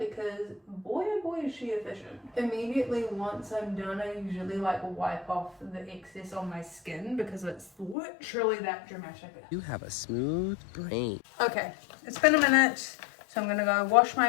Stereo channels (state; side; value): drops out; right; at 8.0 s